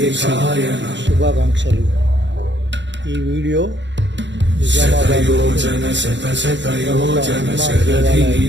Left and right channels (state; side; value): late; left; 0.53 ms